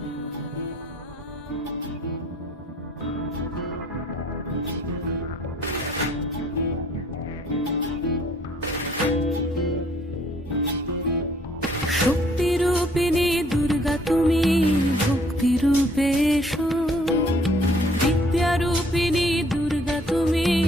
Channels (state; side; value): normal; both; correlation 0.60